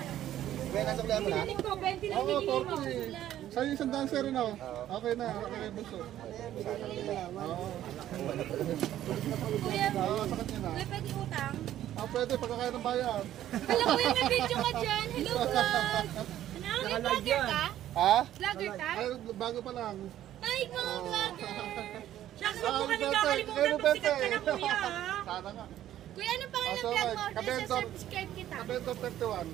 Kaya nasa kaya mo na? Pinaling ko, 20 lang Oo, binigay mo. 40. Sa'yo isang dancer rin ako. Okay na, okay na bunso. Oo. Kuya, Oo, sa kanya na. kuya, pwede utang? Pwede, pagkakaya ng bayan. Alam ko yung may video ka dyan. Hello, vlog. Ano, may vlogger ka? Ha? Vlogger ka? Ay, bago pa lang. Ay, mga vlogger. Shucks, Ah, huwag mo kami Bete, kakalimutan pag sikat ka na, kuya. ha? Sana nga. Kuya, anong pangalan ng So, vlog mo? Kabendor. Subscribe kita. Kabento 31.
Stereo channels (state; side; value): quieter; left; 12.3 dB